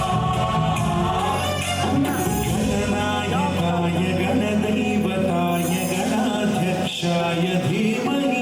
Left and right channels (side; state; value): both; identical; correlation 1.00